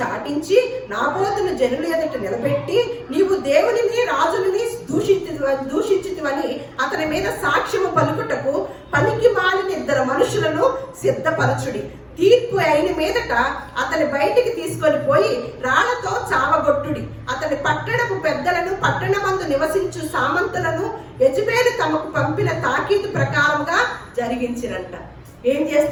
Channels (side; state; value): both; identical; correlation 1.00